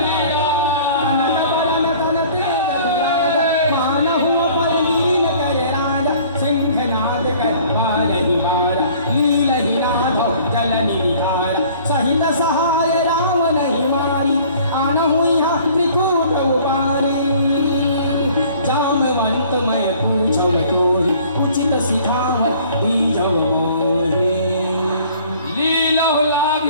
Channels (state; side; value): inverted; both; correlation -0.52